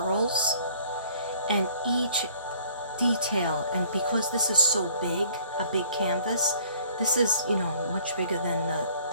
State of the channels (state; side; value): inverted; both; correlation -0.56